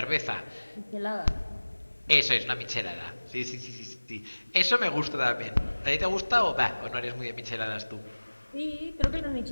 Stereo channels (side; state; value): both; inverted; correlation -1.00